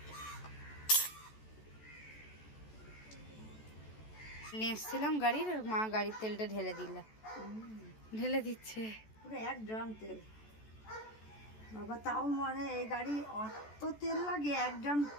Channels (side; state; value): right; late; 14 ms